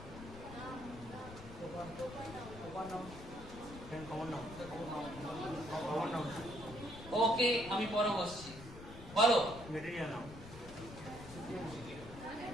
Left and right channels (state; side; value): noise; left; rumble, 14 dB below the sound